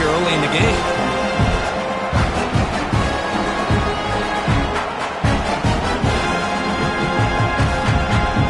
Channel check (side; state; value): both; identical; correlation 1.00